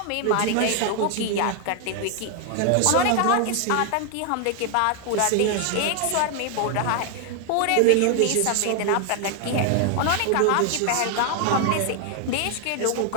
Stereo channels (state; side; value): different; both; correlation 0.00